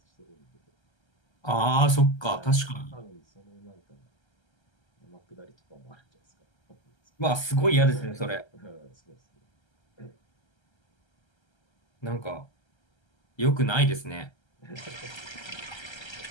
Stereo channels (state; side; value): late; right; 1.3 ms